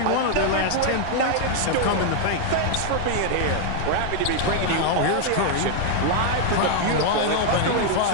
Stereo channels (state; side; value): different; both; correlation 0.00